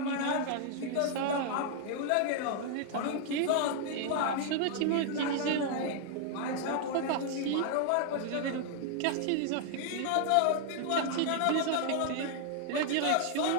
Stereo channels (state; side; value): different; both; correlation 0.00